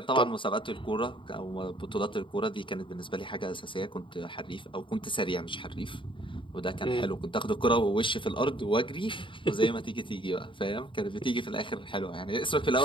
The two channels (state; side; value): late; right; 0.24 ms